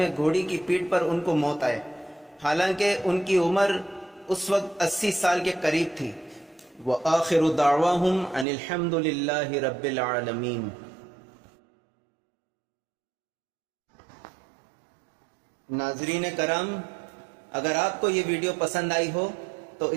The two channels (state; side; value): drops out; left; at 8.5 s